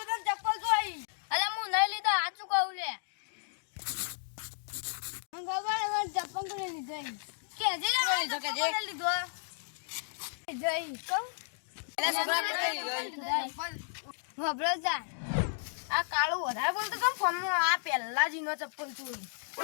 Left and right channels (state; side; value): silent; right; digital silence